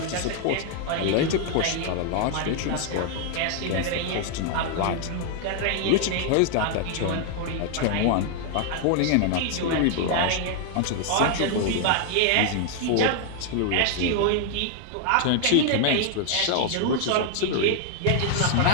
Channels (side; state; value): both; different; correlation 0.00